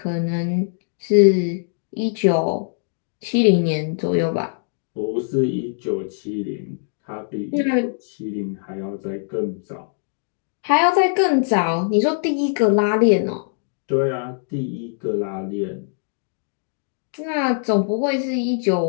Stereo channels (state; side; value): silent; right; digital silence